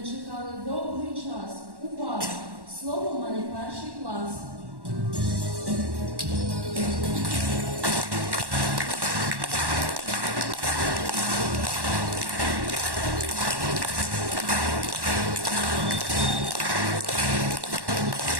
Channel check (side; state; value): left; late; 1.1 ms